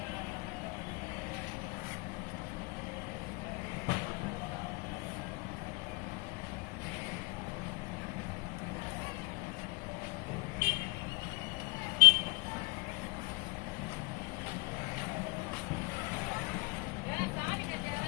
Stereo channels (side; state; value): right; quieter; 25.9 dB